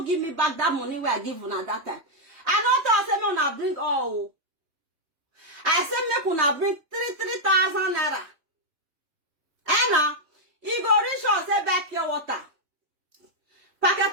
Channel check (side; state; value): left; late; 3.3 ms